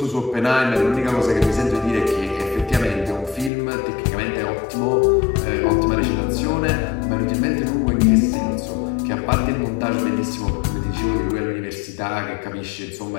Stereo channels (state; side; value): drops out; right; at 3.5 s